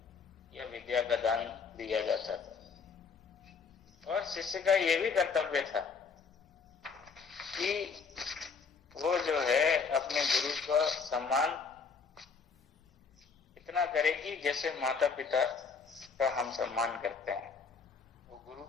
या विद्या का दान दिया जाता था। और शिष्य का ये भी कर्तव्य था कि वो जो है अपने गुरु का सम्मान इतना करे कि जैसे माता पिता का हम सम्मान करते हैं, वो गुरु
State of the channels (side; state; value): right; quieter; 5.4 dB